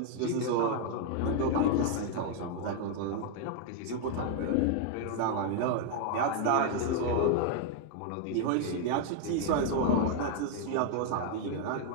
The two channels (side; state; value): both; different; correlation 0.00